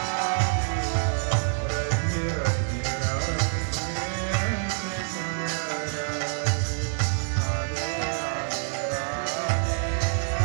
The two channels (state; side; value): silent; left; 60 dB below the other